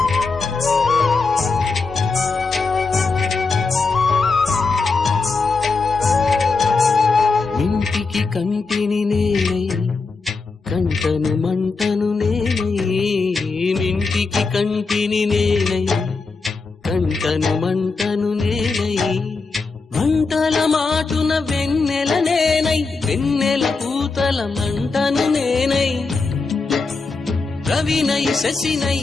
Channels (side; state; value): right; quieter; 4.2 dB